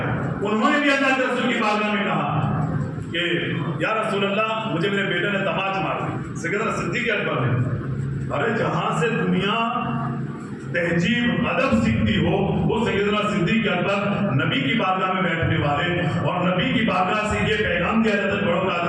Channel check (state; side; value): identical; both; correlation 1.00